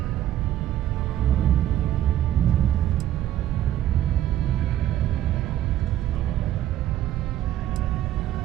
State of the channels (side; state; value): left; quieter; 12.3 dB